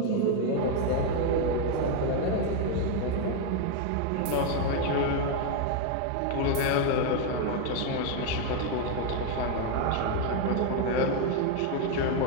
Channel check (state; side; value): different; both; correlation 0.01